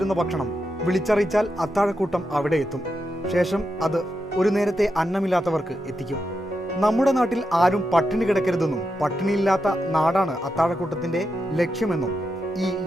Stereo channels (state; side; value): normal; both; correlation 0.86